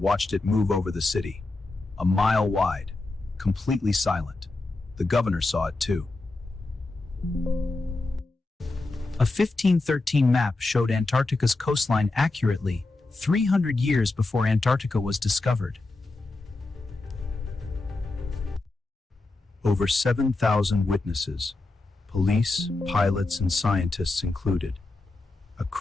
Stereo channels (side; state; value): right; quieter; 3.2 dB